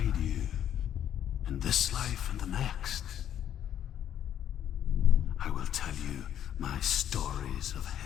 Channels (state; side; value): quieter; right; 10.3 dB